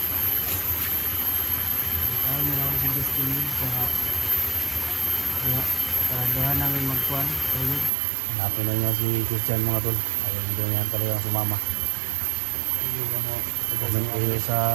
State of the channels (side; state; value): left; drops out; at 7.9 s